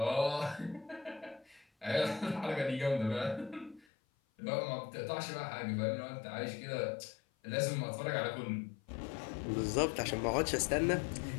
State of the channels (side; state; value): right; drops out; at 3.9 s